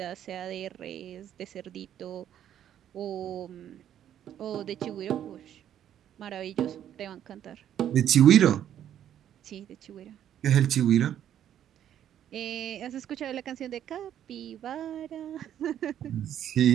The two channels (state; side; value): quieter; left; 10.5 dB